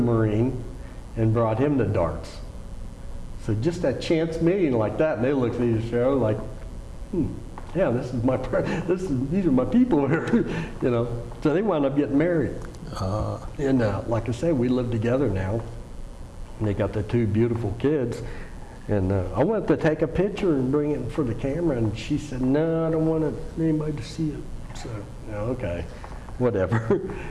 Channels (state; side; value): identical; both; correlation 1.00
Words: and brought him the darts. So just that chance meeting like that, and they looked at each other like, yeah, these are my people here, you know. So they wound up getting married. And like I say, we live together now. And they got their two beautiful kids. And I wanted to take a picture and bring it for the camera, and she said, no, I don't want anybody to see it. So, okay, whatever.